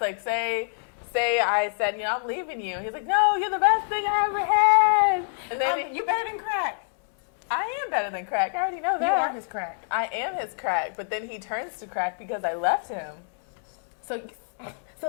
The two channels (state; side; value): silent; right; 61 dB below the other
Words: Like, say I said, I'm leaving you. He's like, no, you're the best thing I ever had. And then you're better than crack. I am better than crack. I already know that. You are his crack. I am his crack. But then he turns to crack because I left him. So